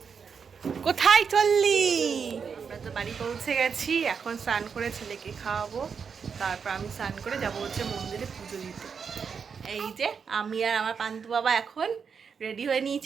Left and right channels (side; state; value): left; quieter; 6.2 dB